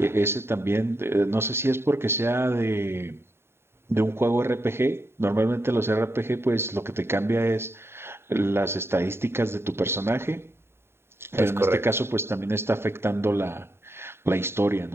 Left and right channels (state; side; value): late; left; 0.12 ms